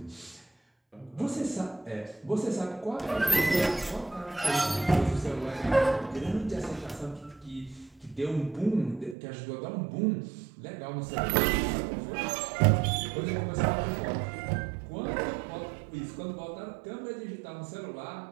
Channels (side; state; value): left; drops out; at 9.2 s